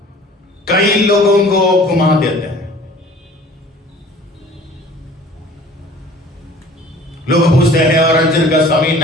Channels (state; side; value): normal; both; correlation 0.48